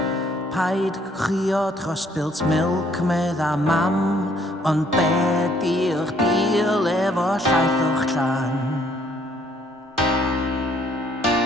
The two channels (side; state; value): both; normal; correlation 0.65